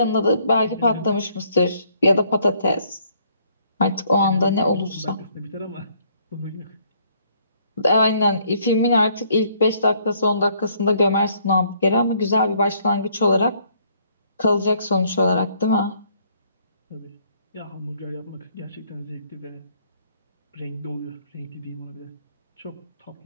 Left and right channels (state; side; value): inverted; both; correlation -0.65